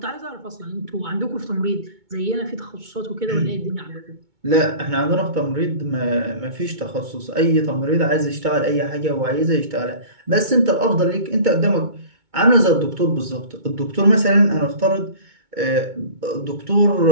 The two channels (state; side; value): late; left; 2.2 ms